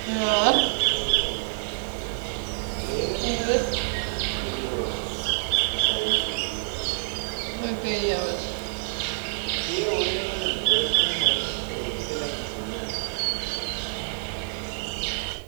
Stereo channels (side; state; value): left; silent; digital silence